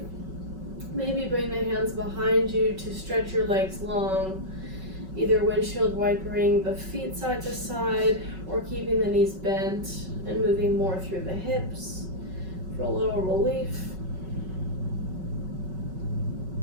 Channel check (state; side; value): late; left; 5.3 ms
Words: Maybe bring the hands behind you to stretch your legs long, either windshield wipering the feet side to side or keeping the knees bent and moving more through the hips for a little relief.